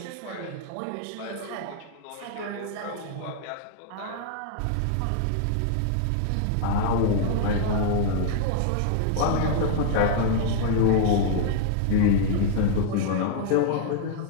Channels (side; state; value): both; different; correlation -0.01